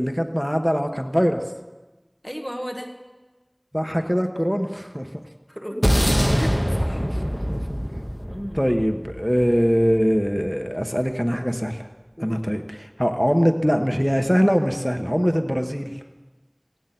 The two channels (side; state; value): both; identical; correlation 1.00